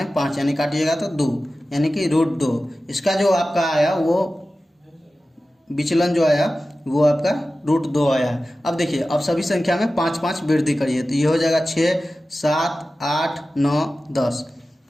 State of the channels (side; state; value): both; normal; correlation 0.95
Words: 5 यानी काटिएगा तो 2 यानी कि √2। इसका जो आपका आया वो विचलन जो आया वो आपका √2 आया है। अब देखिए अब सभी संख्या में 5 5 वृद्धि करिए तो ये हो जाएगा 6 7 8 9 10।